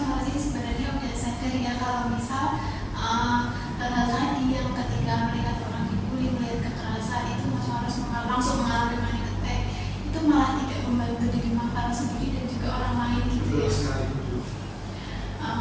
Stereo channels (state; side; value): identical; both; correlation 1.00